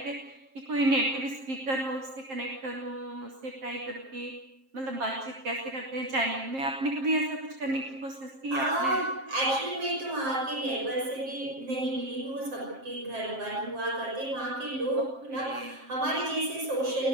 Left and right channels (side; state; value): left; late; 7.5 ms